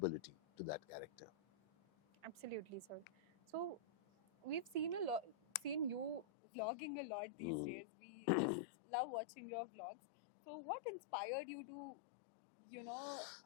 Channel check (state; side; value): drops out; right; at 6.2 s